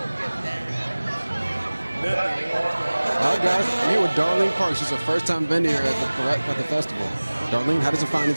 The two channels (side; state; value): both; inverted; correlation -1.00